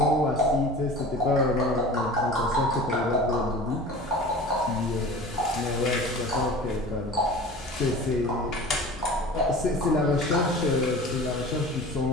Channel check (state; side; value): normal; both; correlation 0.39